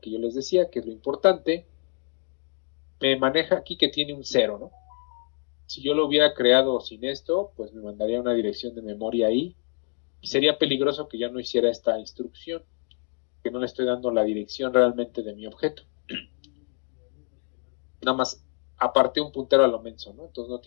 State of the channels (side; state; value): right; quieter; 37.6 dB